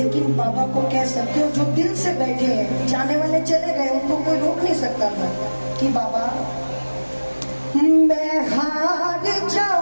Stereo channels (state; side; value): inverted; both; correlation -1.00